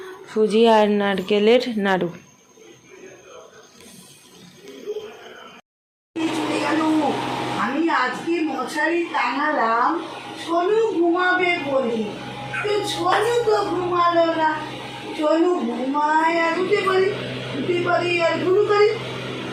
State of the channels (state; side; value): identical; both; correlation 1.00